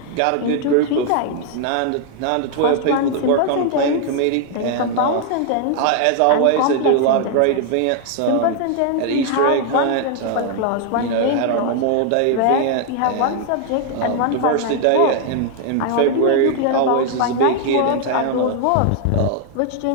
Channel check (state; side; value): different; both; correlation 0.00